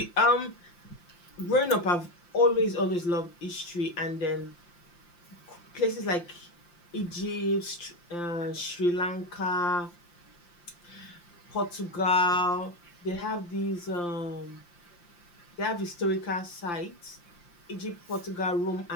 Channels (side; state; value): right; late; 5.8 ms